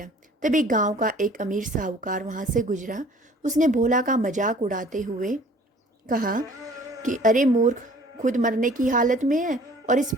तभी गांव का एक अमीर साहूकार वहां से गुजरा। उसने भोला का मजाक उड़ाते हुए कहा कि अरे मूर्ख, खुद मरने की हालत में है और इस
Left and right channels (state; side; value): normal; both; correlation 0.52